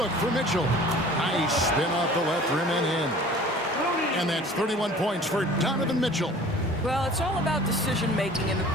for Mitchell. Nice spin off the left rim and in. And that's 31 points for Donovan Mitchell. Well, it's all about decision-making in the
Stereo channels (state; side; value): normal; both; correlation 0.46